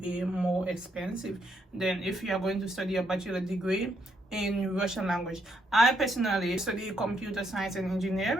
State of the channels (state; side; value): normal; both; correlation 0.75